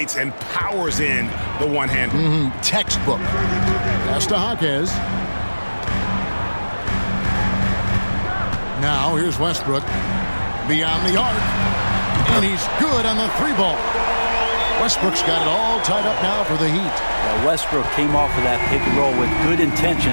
and powers in the one-hander. Textbook. Pass to Jaquez. Now here's Westbrook. Beyond the arc. And he's good on the three ball. Westbrook's got it all tied up now for the Heat. Well, Westbrook came off of that pick and roll with good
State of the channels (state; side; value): inverted; both; correlation -1.00